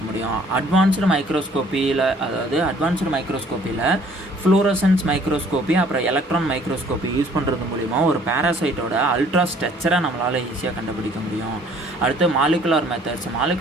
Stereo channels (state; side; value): normal; both; correlation 0.57